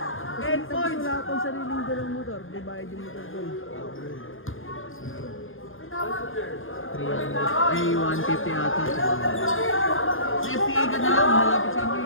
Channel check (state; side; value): late; right; 0.59 ms